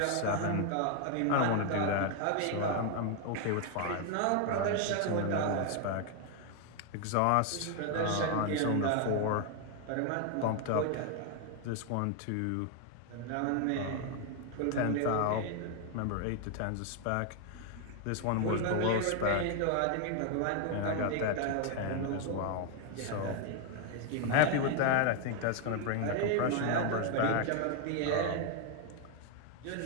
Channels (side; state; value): both; different; correlation 0.01